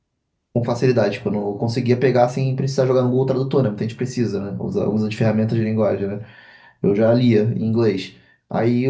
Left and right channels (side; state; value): both; identical; correlation 1.00